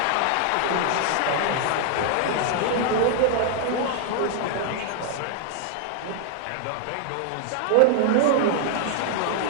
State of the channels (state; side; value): different; both; correlation 0.00